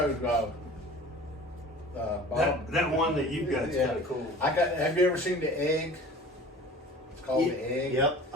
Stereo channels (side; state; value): both; normal; correlation 0.42